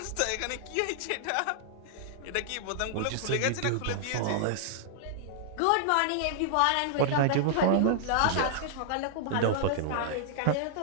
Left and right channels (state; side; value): different; both; correlation -0.01